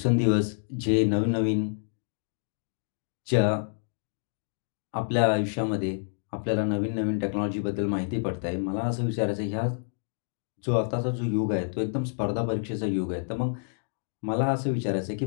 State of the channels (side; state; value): right; silent; digital silence